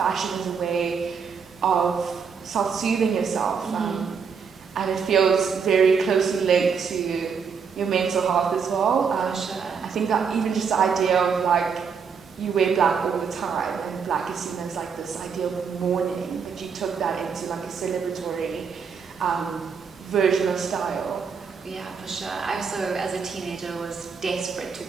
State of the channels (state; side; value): quieter; left; 6.1 dB